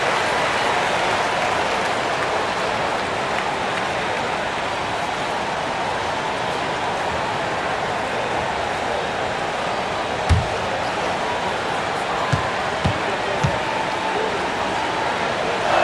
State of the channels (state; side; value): identical; both; correlation 1.00